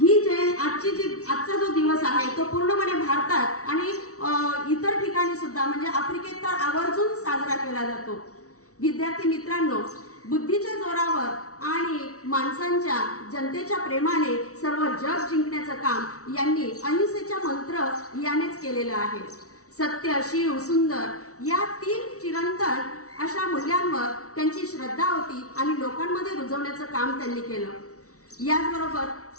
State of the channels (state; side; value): late; right; 0.65 ms